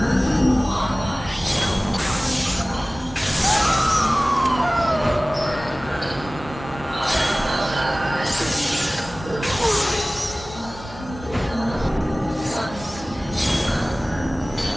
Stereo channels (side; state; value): both; normal; correlation 0.98